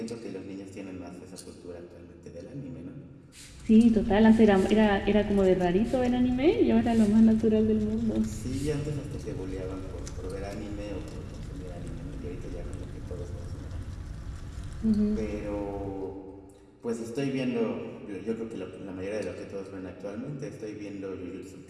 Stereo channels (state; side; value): identical; both; correlation 1.00